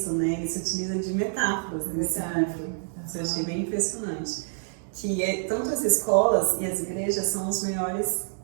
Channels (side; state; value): left; silent; 60 dB below the other